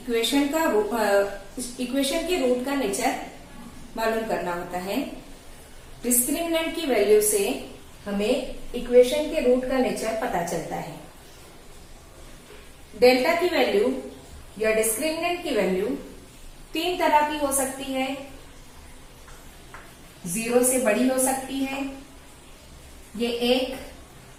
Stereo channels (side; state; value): both; identical; correlation 1.00